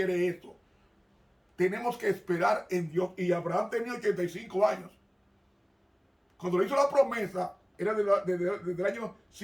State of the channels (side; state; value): both; identical; correlation 1.00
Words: eso. Tenemos que esperar en Dios. Y Abraham tenía 85 años. Cuando le hizo la promesa, era desde el año